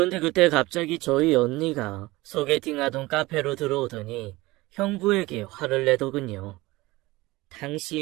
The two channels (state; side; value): quieter; left; 20.2 dB